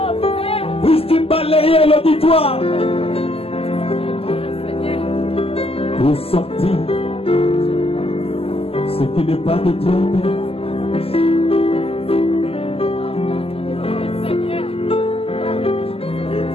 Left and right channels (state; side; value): late; right; 0.28 ms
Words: puisses-tu balayer l'auditoire pour sortir ce qui n'est pas de toi, Père.